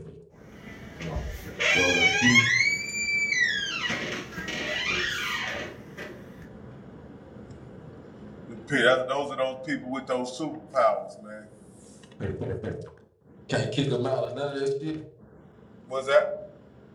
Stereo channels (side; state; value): both; identical; correlation 1.00